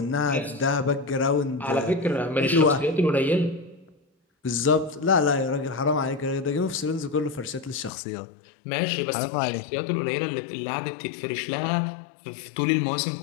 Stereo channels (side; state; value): right; drops out; at 7.9 s